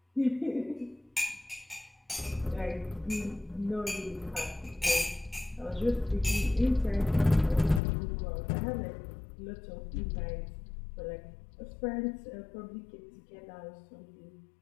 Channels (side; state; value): right; drops out; at 7.8 s